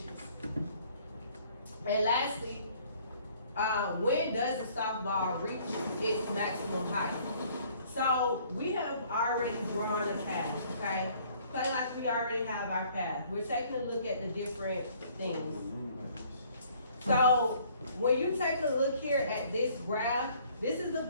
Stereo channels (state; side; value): inverted; both; correlation -0.59